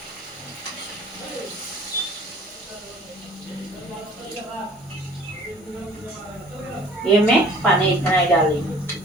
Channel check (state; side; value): normal; both; correlation 0.51